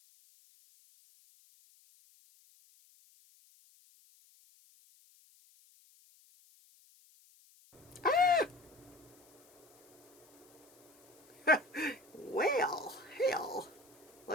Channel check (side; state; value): left; noise; hiss, 27 dB below the sound